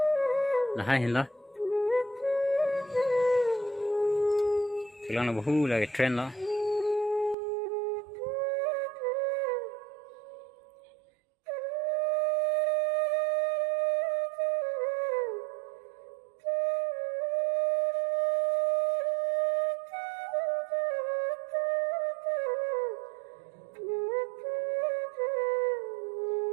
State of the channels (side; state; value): left; drops out; at 7.4 s